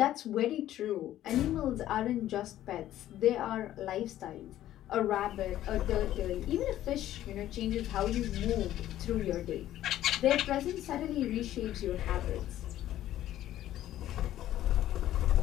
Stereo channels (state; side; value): quieter; right; 13.0 dB